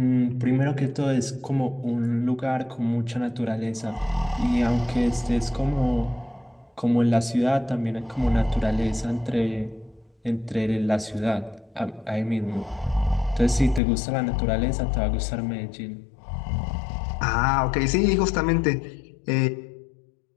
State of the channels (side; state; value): right; drops out; at 13.8 s